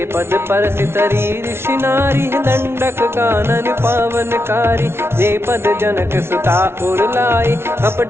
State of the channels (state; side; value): late; left; 0.12 ms